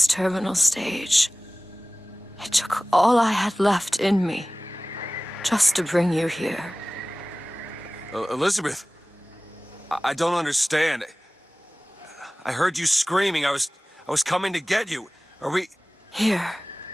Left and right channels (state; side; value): normal; both; correlation 0.98